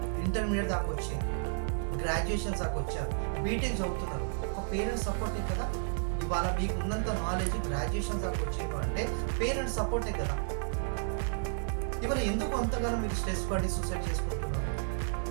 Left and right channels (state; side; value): silent; left; digital silence